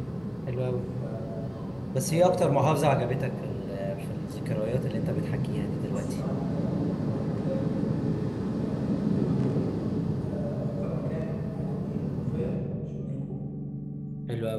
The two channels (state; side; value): noise; left; rumble, 26 dB below the sound